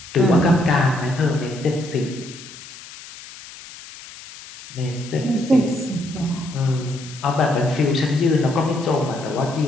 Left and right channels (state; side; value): noise; left; hiss, 16 dB below the sound